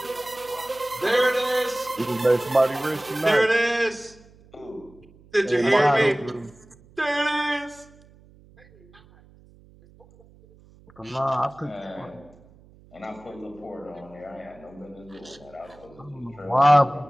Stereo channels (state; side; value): noise; right; hum, 26 dB below the sound